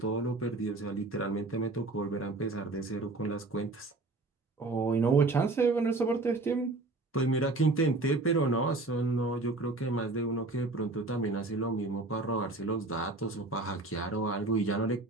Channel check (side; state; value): left; quieter; 3.2 dB